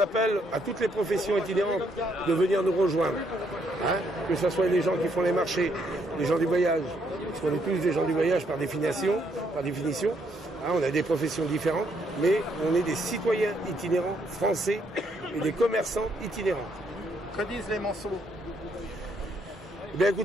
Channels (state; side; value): normal; both; correlation 0.72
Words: à toutes les professions itinérantes de venir nous rejoindre. Hein, que ce soit les gens qui font les marchés, les gens du voyage, parce qu'on est tous des gens du voyage par définition. Hein, on a des professions différentes, mais on est des citoyens itinérants français et des commerçants itinérants. Que disent les Manceaux? Eh bien